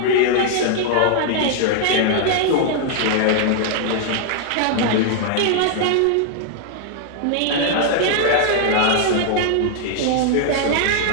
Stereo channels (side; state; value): both; different; correlation 0.00